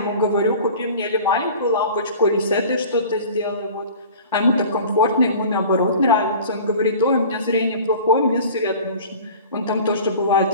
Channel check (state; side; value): inverted; both; correlation -0.41